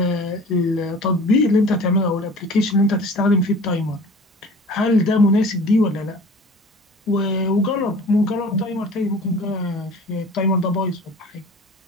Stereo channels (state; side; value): normal; both; correlation 0.43